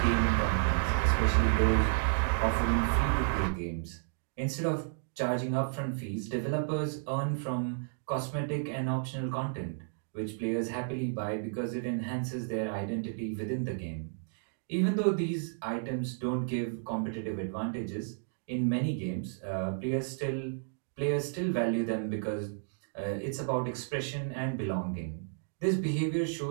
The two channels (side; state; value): left; silent; digital silence